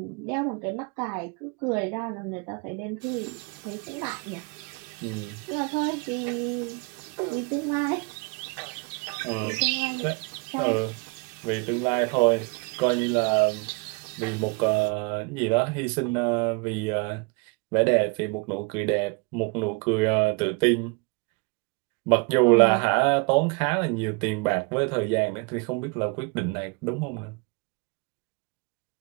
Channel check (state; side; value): quieter; left; 29.5 dB